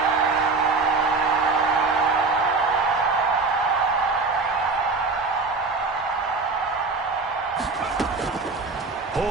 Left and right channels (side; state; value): left; quieter; 4.0 dB